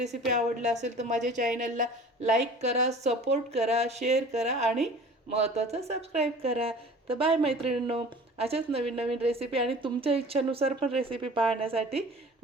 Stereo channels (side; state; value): both; normal; correlation 0.44